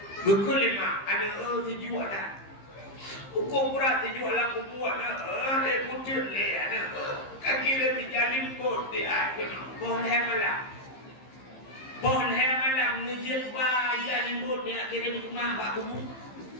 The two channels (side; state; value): right; late; 15 ms